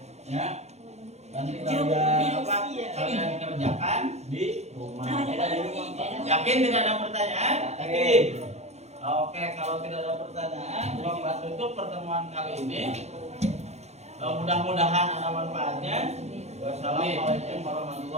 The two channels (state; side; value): late; left; 0.32 ms